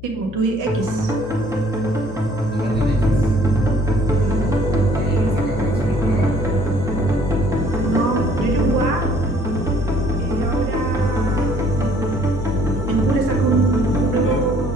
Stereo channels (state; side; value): noise; left; hum, 16 dB below the sound